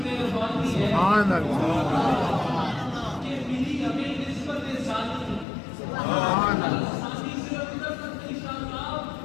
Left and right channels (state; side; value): drops out; right; at 5.5 s